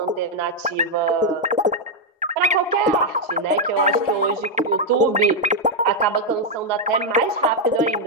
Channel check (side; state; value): both; normal; correlation -0.01